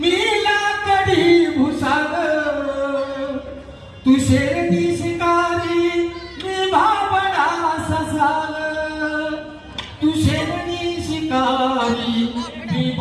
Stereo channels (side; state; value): both; identical; correlation 1.00